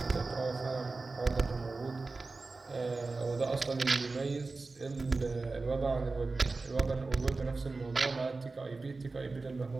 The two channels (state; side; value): quieter; left; 3.7 dB